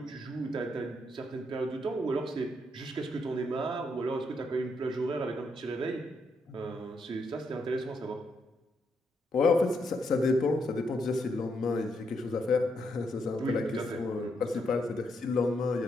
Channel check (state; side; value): normal; both; correlation 0.78